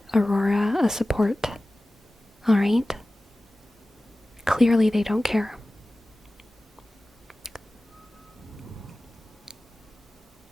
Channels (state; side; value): normal; both; correlation 0.96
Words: Aurora a support. Alright? Clearly they don't care.